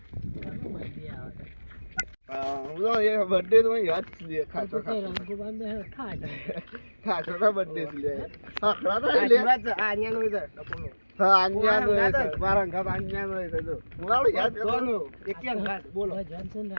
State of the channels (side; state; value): both; inverted; correlation -1.00